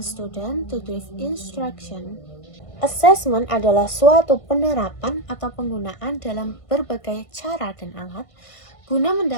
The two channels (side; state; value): right; late; 1.5 ms